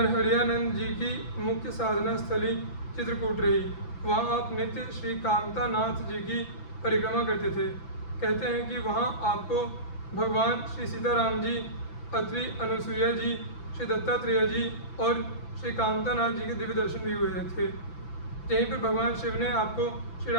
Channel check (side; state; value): right; late; 6.0 ms